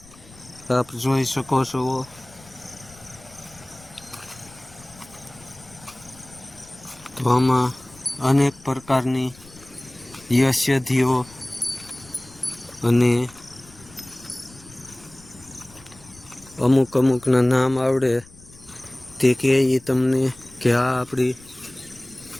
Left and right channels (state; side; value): noise; left; rumble, 23 dB below the sound